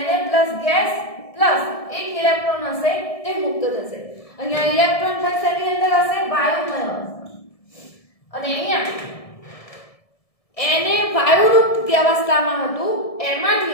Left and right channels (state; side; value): late; right; 1.7 ms